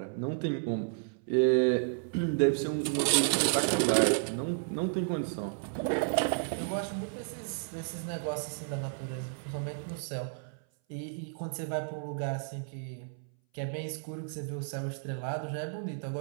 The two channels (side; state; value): left; silent; 56 dB below the other